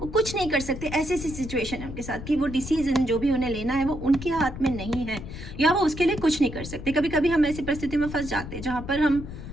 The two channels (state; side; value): noise; left; rumble, 10 dB below the sound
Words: कुछ नहीं कर सकते। ऐसी सिचुएशन है उनके साथ कि वो डिसीजन जो भी उन्हें लेना है वो उनके हाथ में नहीं है, या वो उसके लिए कुछ नहीं कर सकते। कभी कभी हम ऐसी परिस्थिति में फंस जाते हैं जहां पर हम